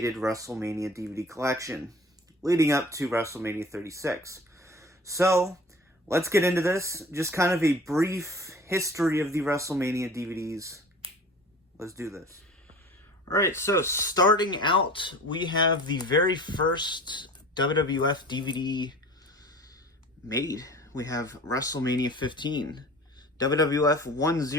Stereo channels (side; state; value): both; normal; correlation 0.43